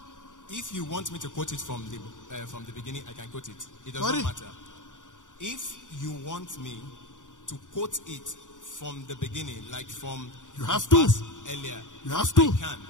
If you want me to quote it from the beginning, I can quote it. It does Sorry? not matter. If you want me to quote it from the beginning, like from You have the to. verse earlier, You have to. I can.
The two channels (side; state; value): right; late; 0.86 ms